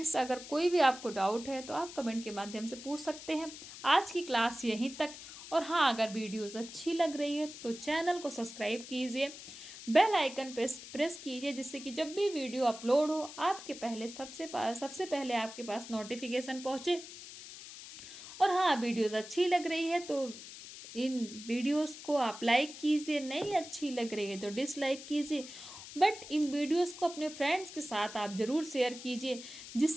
अगर कोई भी आपको डाउट है तो आप कमेंट के माध्यम से पूछ सकते हैं। आज की क्लास यहीं तक। और हाँ, अगर वीडियोस अच्छी लग रही है तो चैनल को सब्सक्राइब कीजिए, बेल आइकन प्रेस कीजिए, जिससे कि जब भी वीडियो अपलोड हो आपके पहले सबसे पहले आपके पास नोटिफिकेशन पहुँचे। और हाँ, वीडियोस अच्छी लग रही है तो इन वीडियोस को आप लाइक कीजिए, नहीं अच्छी लग रही है तो डिसलाइक कीजिए, बट इन वीडियोस को अपने फ्रेंड्स के साथ आप ज़रूर शेयर कीजिए,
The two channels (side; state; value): left; noise; hiss, 13 dB below the sound